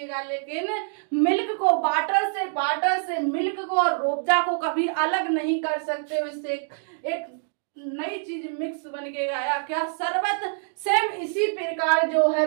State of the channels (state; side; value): silent; left; digital silence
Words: लेकिन मिल्क को वाटर से मिल्क को और रूअफ़ज़ा को कभी अलग नहीं कर सकते। इससे एक नई चीज मिक्स बन के गया, क्या शरबत। सेम इसी प्रकार जो है